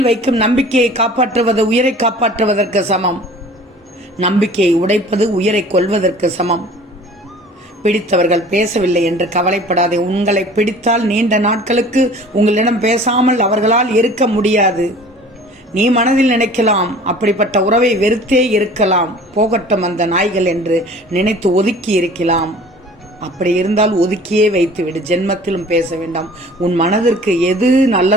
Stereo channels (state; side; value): normal; both; correlation 0.46